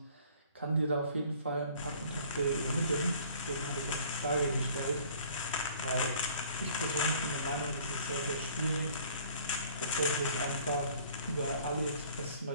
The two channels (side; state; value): both; inverted; correlation -0.54